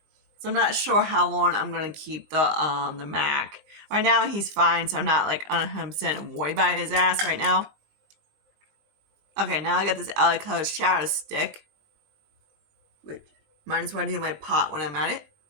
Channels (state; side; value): late; left; 19 ms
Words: So I'm not sure how long I'm gonna keep the MAC. Right now he's fine, so I'm not like 100% worried about his ass right now. Okay, now I got this LA Color Shadow Stick, which might as well do my pot when I'm at it.